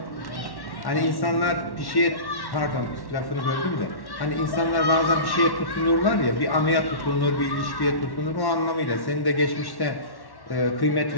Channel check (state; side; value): late; right; 1.1 ms